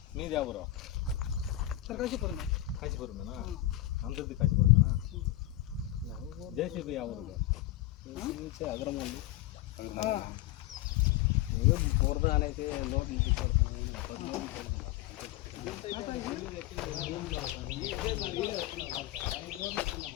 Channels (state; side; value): quieter; right; 15.0 dB